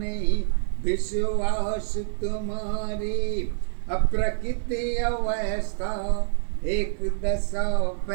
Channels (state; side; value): silent; left; 59 dB below the other